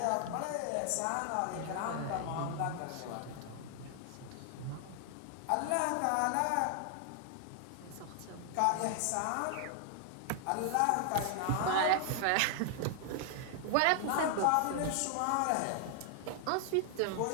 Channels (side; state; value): both; different; correlation 0.00